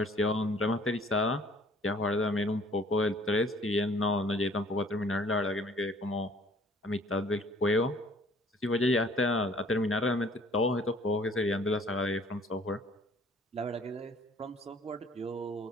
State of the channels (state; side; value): normal; both; correlation 0.56